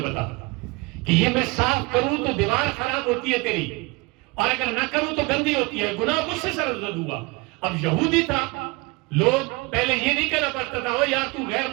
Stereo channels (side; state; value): left; quieter; 25.8 dB